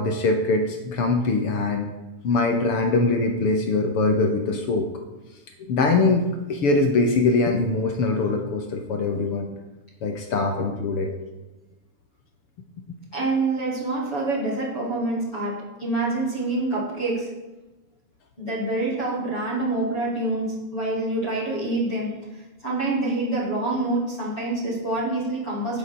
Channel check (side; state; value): right; late; 7.0 ms